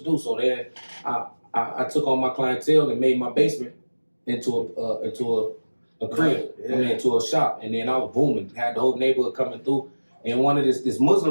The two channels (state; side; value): inverted; both; correlation -1.00